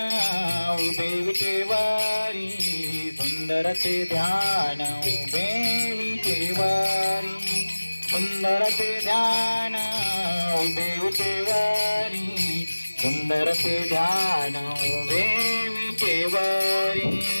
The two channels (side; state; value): both; inverted; correlation -1.00